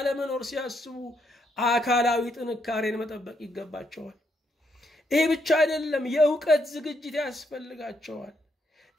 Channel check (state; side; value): normal; both; correlation 0.76